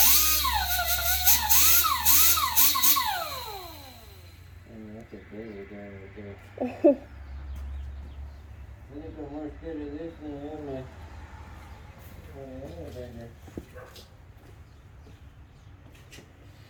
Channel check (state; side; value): identical; both; correlation 1.00